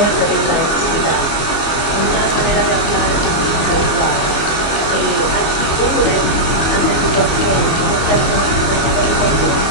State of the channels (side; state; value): right; late; 24 ms